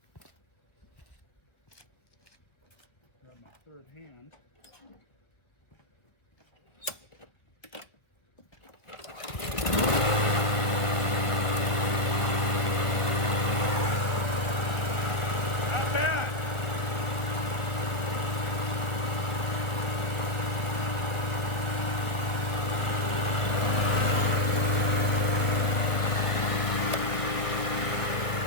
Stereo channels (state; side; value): late; right; 1.7 ms